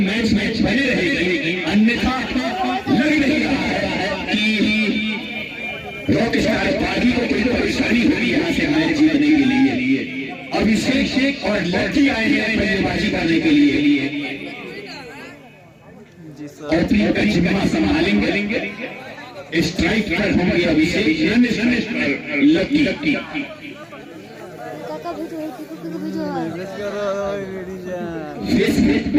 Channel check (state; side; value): identical; both; correlation 1.00